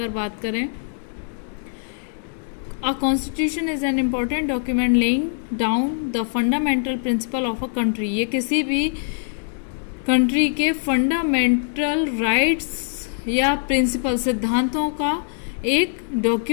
बात करें, a constitution is an important document laying down the fundamental principle of a country. ये किसी भी कंट्री के फंडामेंटल राइट्स या प्रिंसिपल, सिद्धांतों का एक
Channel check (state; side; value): silent; right; digital silence